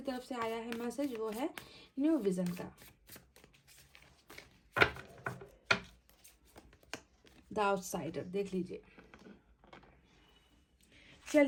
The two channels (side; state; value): both; identical; correlation 1.00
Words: तरफ से आया है मैसेज वो है न्यू विजन का। द आउटसाइडर, देख लीजिए।